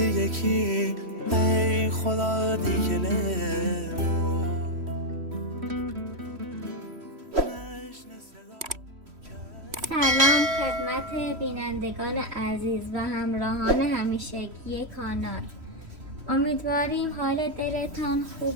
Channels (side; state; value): left; late; 3.1 ms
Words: ای خدا دیگلمو سلام خدمت بینندگان عزیز و همراهان همیشگی کانال. امیدواریم حال دلتان